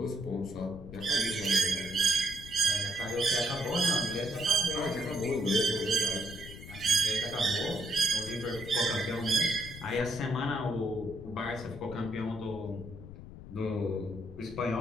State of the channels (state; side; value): noise; left; rumble, 14 dB below the sound